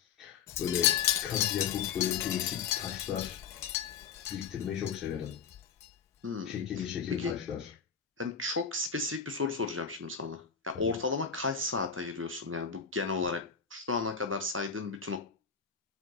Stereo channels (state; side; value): quieter; right; 6.5 dB